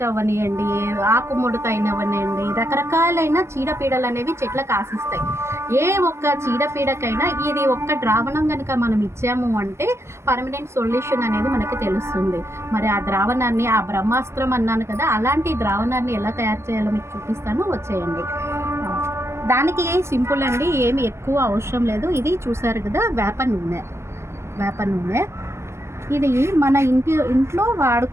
అవనియండి, ఆకుముడత అయినవనియండి, రకరకాలైన చీడపీడలు అనేవి చెట్లకు ఆశిస్తాయి. ఏ ఒక్క చీడపీడకైనా ఇది ఒక్క ద్రావణం కనుక మనం ఇచ్చాము అంటే పర్మనెంట్ సొల్యూషన్ అనేది మనకి తెలుస్తుంది. మరి ఆ ద్రావణాన్ని, ఆ బ్రహ్మాస్త్రం అన్నాను కదా, అలాంటి ద్రావణాన్ని ఎలా తయారు చేయాలో మీకు చూపిస్తాను, వచ్చేయండి. దానికి సింపుల్ అండి, ఏమి ఎక్కువ అవసరం లేదు. ఇది చూసారు కదా, వేప నూనె. ఇది మన ఇంట్లో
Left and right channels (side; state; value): left; late; 0.13 ms